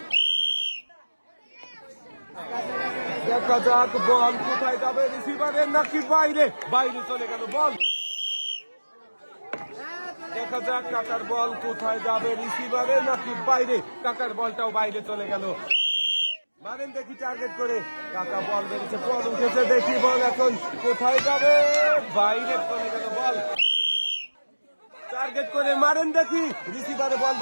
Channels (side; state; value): both; inverted; correlation -1.00